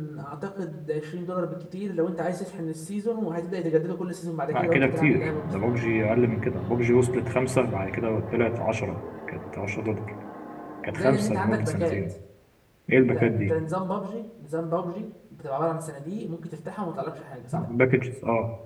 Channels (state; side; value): identical; both; correlation 1.00